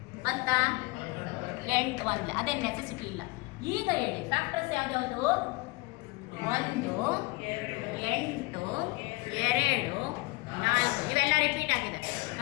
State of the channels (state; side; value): quieter; right; 24.0 dB